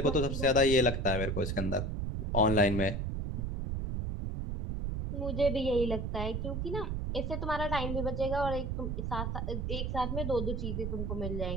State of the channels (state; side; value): noise; right; rumble, 2 dB below the sound